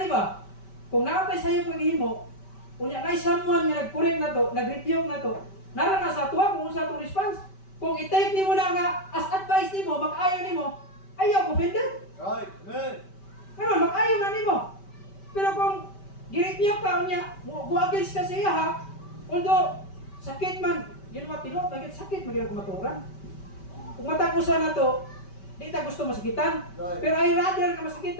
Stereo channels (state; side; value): late; right; 5.2 ms